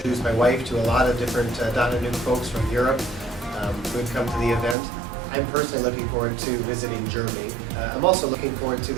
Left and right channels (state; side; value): drops out; left; at 4.8 s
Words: my wife to a lot of different .NETNuke folks from Europe who had come to the event. I'm personally looking forward to visiting Germany. I'm also looking forward to